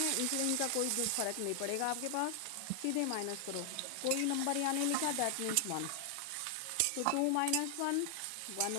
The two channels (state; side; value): different; both; correlation 0.00